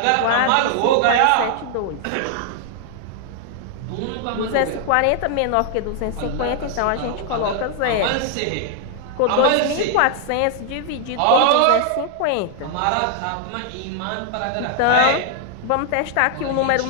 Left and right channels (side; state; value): both; different; correlation 0.00